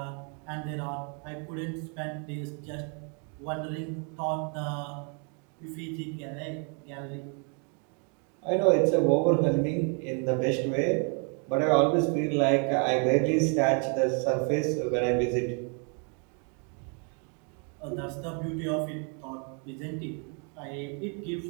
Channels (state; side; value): quieter; left; 38.8 dB